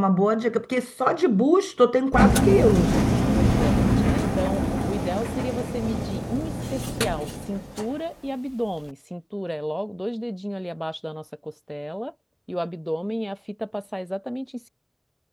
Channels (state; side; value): identical; both; correlation 1.00